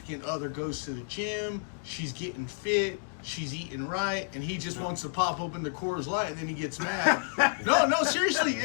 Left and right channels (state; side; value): silent; right; digital silence